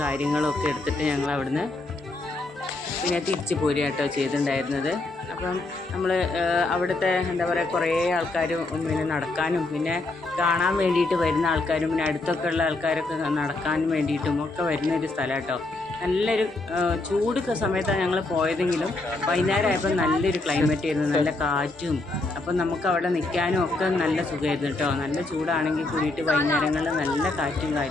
കാര്യങ്ങളും ഒക്കെ എടുത്തിട്ട് ഞങ്ങൾ അവിടുന്ന് പിന്നെ തിരിച്ച് പോരുക കേട്ടോ ചെയ്തിട്ടുണ്ടായിരുന്നത്. അപ്പം നമ്മൾ അവിടുത്തെ എന്താ പറയുക കുറേ ആൾക്കാർ പിന്നെ നടക്കാനും പിന്നെ കാണാൻ വേണ്ടിയിട്ട് വരുന്ന ആൾക്കാരും പിന്നെ അടുത്തൊക്കെ ഉള്ള ആൾക്കാരൊക്കെ നടക്കാനും വേണ്ടിയിട്ടും ഒക്കെ വരുന്നൊരു സ്ഥലം കേട്ടോ. നല്ലൊരു ചൂട് സമയത്താണ് ഞങ്ങൾ പോയതെങ്കിലും വൈകുന്നേരമായപ്പോൾ നല്ലൊരു ക്ലൈമറ്റ് ആയിരുന്നു, നല്ല കാറ്റും. അപ്പം നമുക്ക് അവിടെ നിൽക്കാനും ഒക്കെ നല്ല സുഖമായിരുന്നു കേട്ടോ. നല്ല ചൂടാണെങ്കിൽ കൂടിയിട്ട് വൈകുന്നേരങ്ങളിൽ നല്ല കാറ്റും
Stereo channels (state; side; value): quieter; right; 3.0 dB